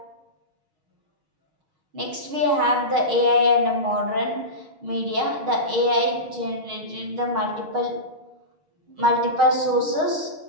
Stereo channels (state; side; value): late; left; 6.4 ms